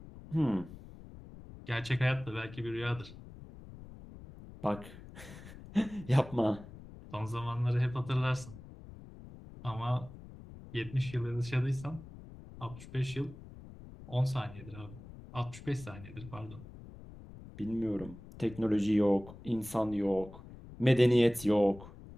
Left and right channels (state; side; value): noise; left; rumble, 16 dB below the sound